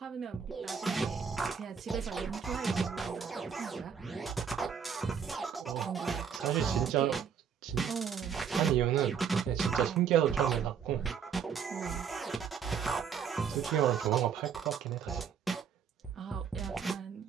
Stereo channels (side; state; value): left; quieter; 7.1 dB